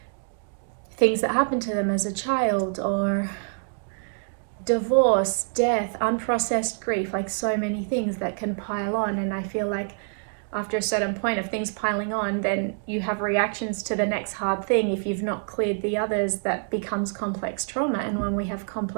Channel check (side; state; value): left; silent; 61 dB below the other